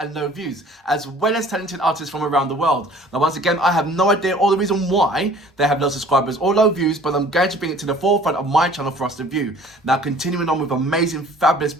low views, as well as talented artists from around the world. Now once again, I have no idea or the reason why they have low subscribers or low views, but I'm going to bring it to the forefront of my channel for us to view. Now continuing on with amazing, fabulous,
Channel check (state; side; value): normal; both; correlation 0.51